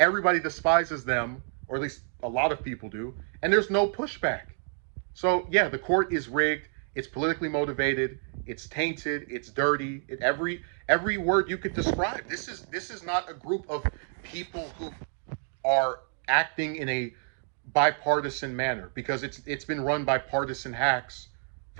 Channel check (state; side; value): silent; left; 59 dB below the other